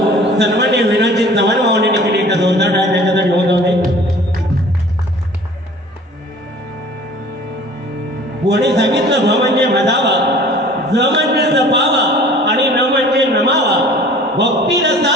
सन्माननीय विनाजी चव्हाण भावनेने केली. एकदा जोरदार टाळ्या त्याच्यासाठी होत होते. कोणी सांगितलं भ म्हणजे मधावा, ज म्हणजे जपावा आणि न म्हणजे नमावा. भक्ती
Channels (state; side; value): normal; both; correlation 0.47